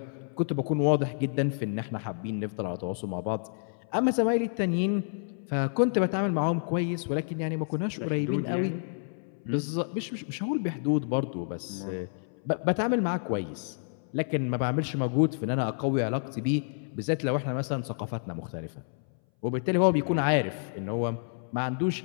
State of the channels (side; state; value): right; silent; 58 dB below the other